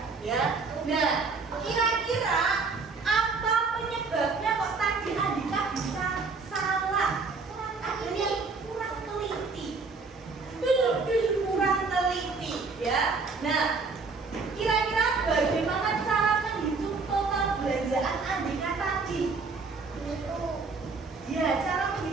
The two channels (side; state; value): left; quieter; 4.4 dB